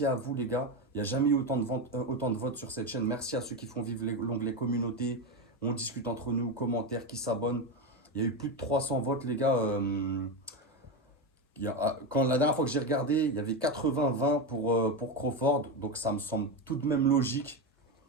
à vous les gars. Il n'y a jamais eu autant de votes sur cette chaîne. Merci à ceux qui font vivre l'onglet communauté. On discute entre nous, commentaires, qui s'abonnent. Il y a eu plus de 300 votes les gars. Quand la dernière fois que j'ai regardé, il y avait 80-20 pour Crawford. Donc ça me semble tout de même logique.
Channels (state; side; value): normal; both; correlation 0.13